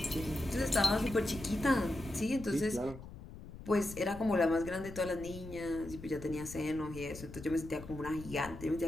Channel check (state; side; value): noise; left; rumble, 13 dB below the sound